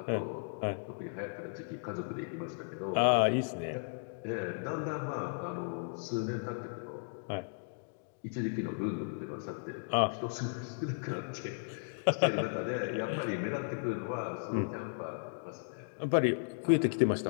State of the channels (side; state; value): right; silent; digital silence